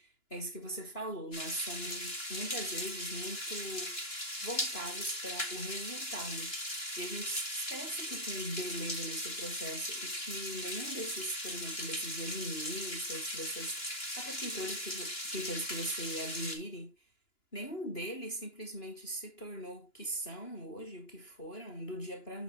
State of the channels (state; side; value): late; right; 2.9 ms